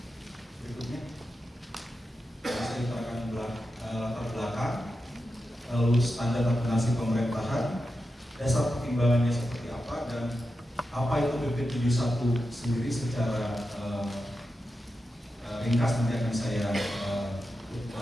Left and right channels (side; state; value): both; normal; correlation 0.90